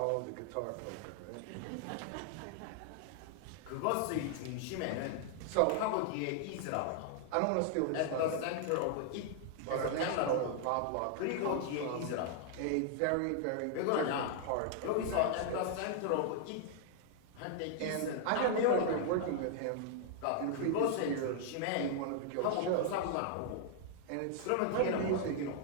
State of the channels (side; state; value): both; different; correlation -0.01